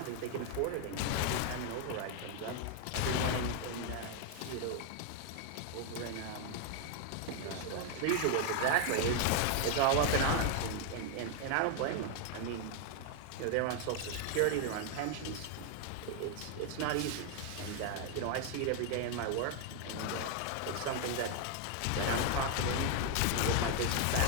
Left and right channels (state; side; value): different; both; correlation 0.00